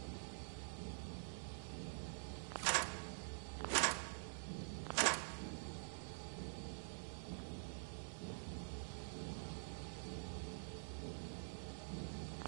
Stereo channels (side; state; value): left; silent; digital silence